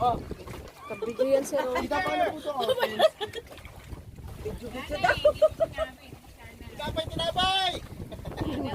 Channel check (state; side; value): identical; both; correlation 1.00